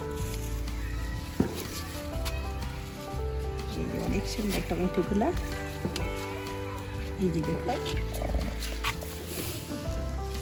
অনেক সুন্দর টমেটোগুলা। এই যে দেখো,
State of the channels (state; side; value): identical; both; correlation 1.00